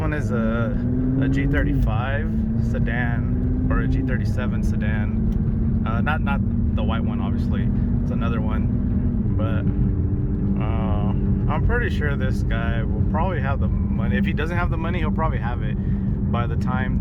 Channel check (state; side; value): identical; both; correlation 1.00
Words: a G35 sedan, or a G37 sedan. Not the white one, obviously. It's another one. But I'm pretty sure this guy will probably have the money. If he doesn't have the money, he'll probably have it by the time